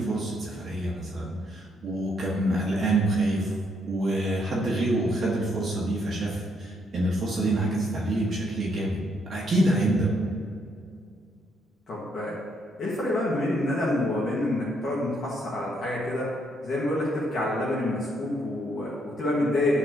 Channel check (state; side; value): normal; both; correlation 0.73